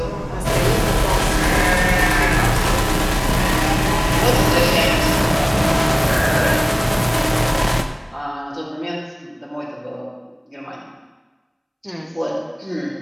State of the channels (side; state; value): both; identical; correlation 1.00